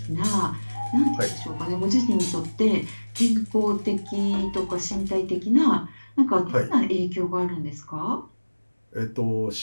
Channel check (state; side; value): inverted; both; correlation -1.00